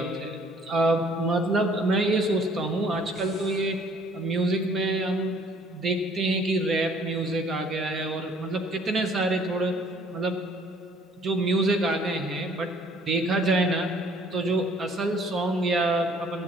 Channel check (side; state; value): both; normal; correlation 0.58